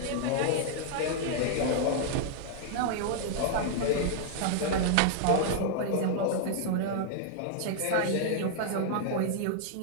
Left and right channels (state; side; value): different; both; correlation -0.01